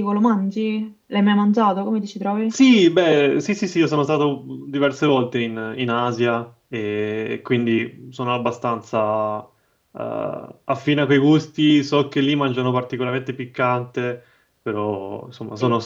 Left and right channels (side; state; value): both; identical; correlation 1.00